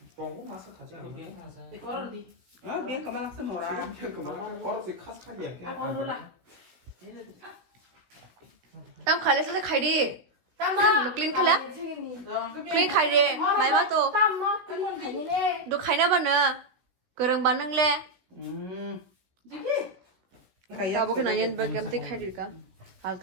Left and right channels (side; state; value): left; late; 17 ms